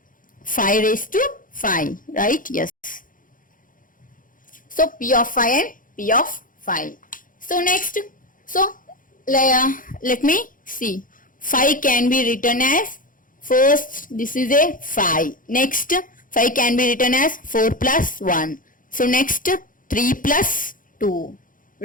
5 raised to 5, right? Yes. So P of 5 and P of 5. So next, so let me see. 5 can be written as, first this is a 5. Next 5 can be written as 4 plus 1. So next 3 plus 2,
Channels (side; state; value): right; late; 0.39 ms